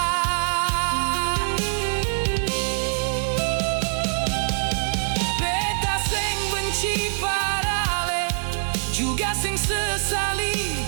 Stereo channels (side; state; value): left; silent; 63 dB below the other